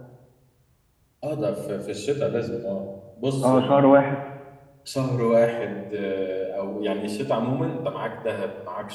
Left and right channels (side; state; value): both; identical; correlation 1.00